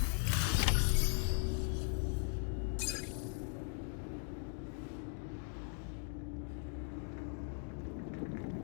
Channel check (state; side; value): silent; right; 52 dB below the other